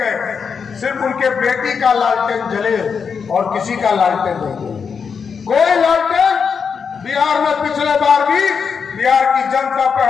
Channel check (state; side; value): quieter; right; 6.1 dB